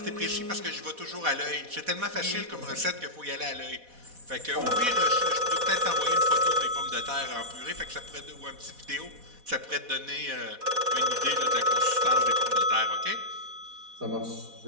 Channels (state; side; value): late; left; 4.1 ms